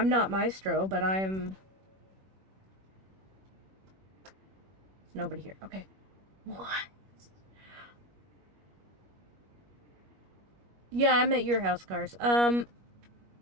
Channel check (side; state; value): left; late; 21 ms